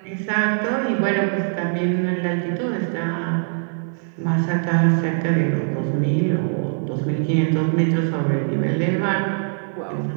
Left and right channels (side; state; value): left; silent; 55 dB below the other